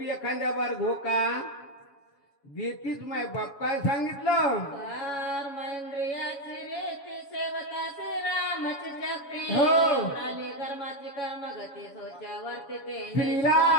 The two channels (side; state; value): right; late; 7.2 ms